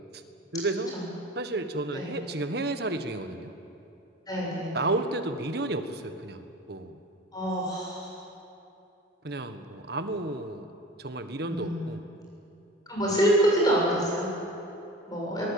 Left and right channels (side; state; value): both; normal; correlation 0.37